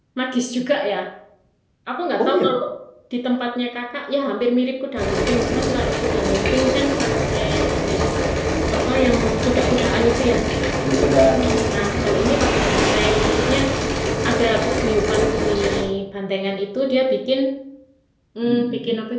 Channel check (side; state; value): both; identical; correlation 1.00